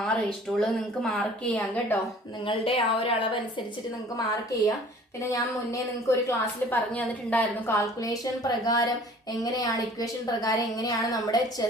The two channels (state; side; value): normal; both; correlation 0.50